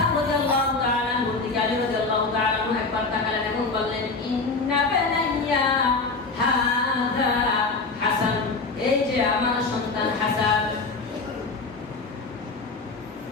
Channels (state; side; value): quieter; right; 3.9 dB